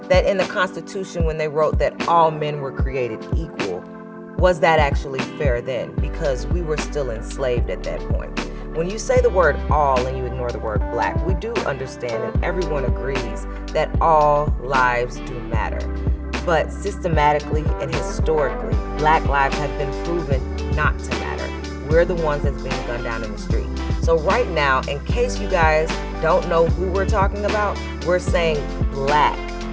that in the Constitution, when they wrote that all men were created equal, was that actually fair then? Because we were still enslaved at that point. When you say the word all and you ignore the word black, we do understand and everyone agrees that all lives do matter. But systematically and historically, Black lives have been proven not to matter. We're the ones that's being gunned down in the street. So right now, in case you guys don't know who we're talking about, we're saying Black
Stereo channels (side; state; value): both; identical; correlation 1.00